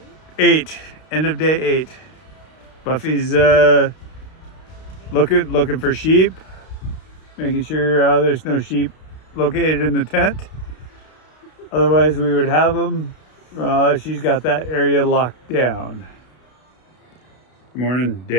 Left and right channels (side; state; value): right; late; 32 ms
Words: 8, end of day 8. Buffy's looking for sheep, making sure there's no sheep located in the tent. Otherwise we would have them. She's got that area locked down. Morning,